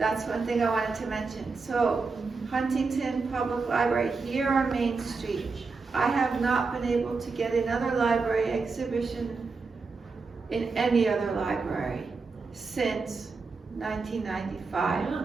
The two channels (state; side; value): quieter; left; 4.4 dB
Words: one thing I wanted to mention. So Huntington Public Library here on Main Street, I have not been able to get another library exhibition in any other library since 1995. Wow.